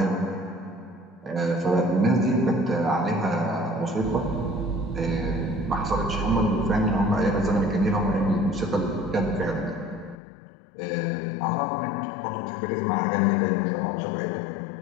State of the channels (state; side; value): drops out; right; at 10.2 s